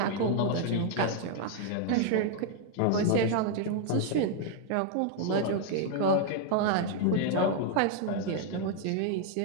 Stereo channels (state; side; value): different; both; correlation 0.00